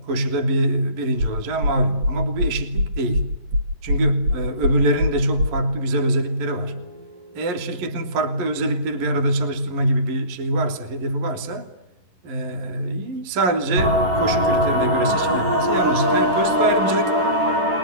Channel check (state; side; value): late; left; 11 ms